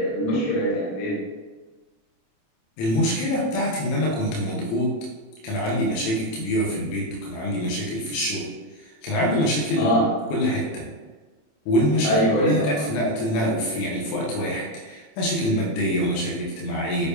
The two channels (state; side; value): late; right; 27 ms